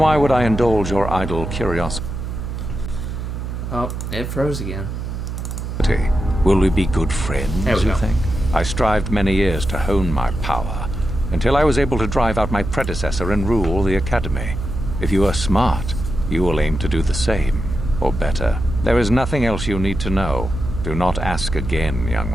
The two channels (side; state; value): right; noise; hum, 5 dB below the sound